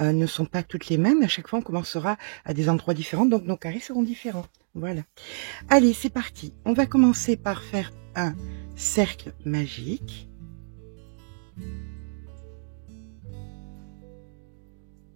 sont pas toutes les mêmes, à chaque fois, on commencera à des endroits différents, donc nos carrés seront différents. Voilà. Allez, c'est parti. On va commencer par faire un cercle magique.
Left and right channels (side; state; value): left; silent; digital silence